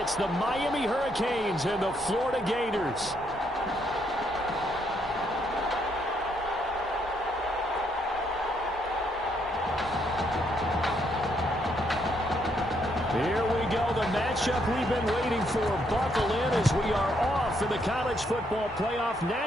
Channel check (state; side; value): normal; both; correlation 0.73